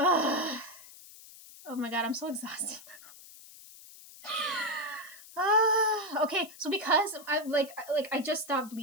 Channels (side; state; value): left; noise; hiss, 19 dB below the sound